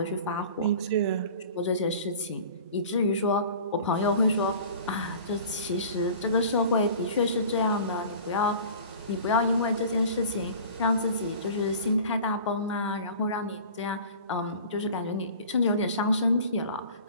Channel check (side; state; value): both; inverted; correlation -0.42